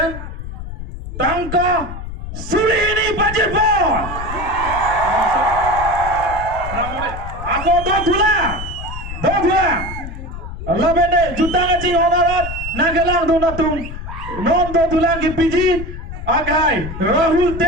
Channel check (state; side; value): noise; left; rumble, 9 dB below the sound